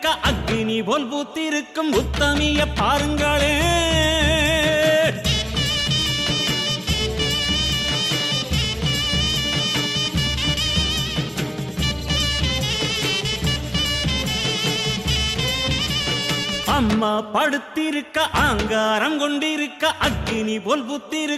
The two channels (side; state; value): both; identical; correlation 1.00